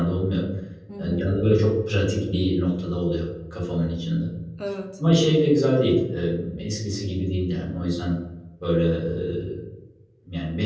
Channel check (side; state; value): both; identical; correlation 1.00